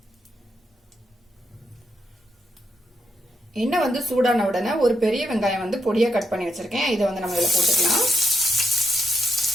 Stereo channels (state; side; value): normal; both; correlation 0.81